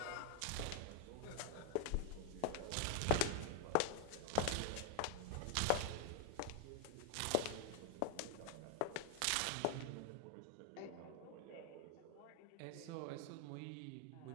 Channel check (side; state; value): both; different; correlation 0.00